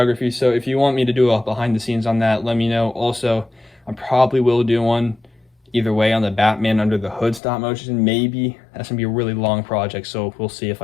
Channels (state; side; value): drops out; right; at 7.4 s